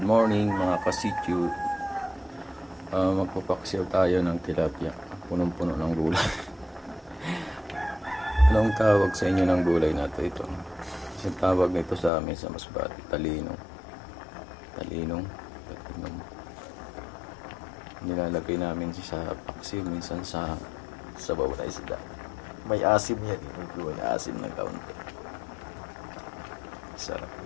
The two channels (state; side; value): drops out; right; at 12.1 s